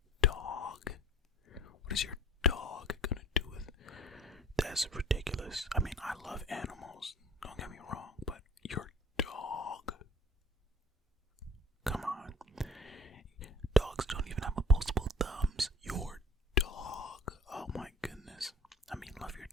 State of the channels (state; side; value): normal; both; correlation 0.45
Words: dog. What is your dog gonna do with it? That's ridiculous. I mean, I love animals. Don't get me wrong, but your dog. Come on. Dogs don't even have opposable thumbs. Your dog. Oh my goodness. I mean, love your